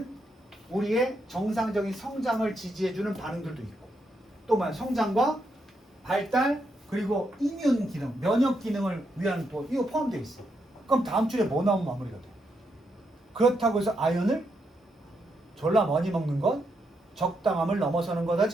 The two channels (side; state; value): both; normal; correlation 0.80